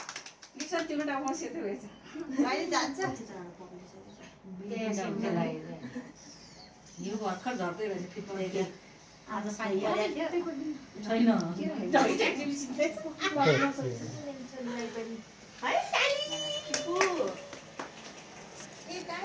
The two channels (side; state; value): both; identical; correlation 1.00